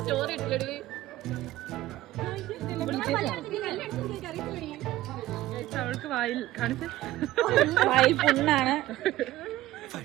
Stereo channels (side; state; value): left; quieter; 15.4 dB